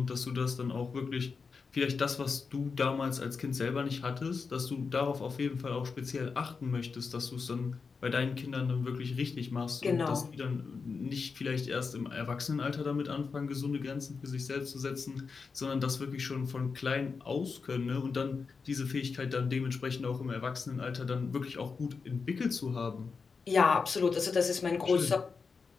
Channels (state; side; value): quieter; right; 5.0 dB